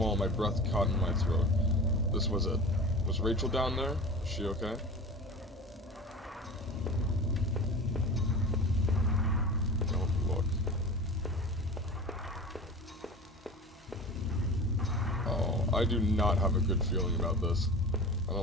my breath caught in my throat. This was it. Was Rachel down there? Was she okay? Don't look. Oh, I do not have a good feeling about this. I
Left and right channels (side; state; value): both; normal; correlation 0.34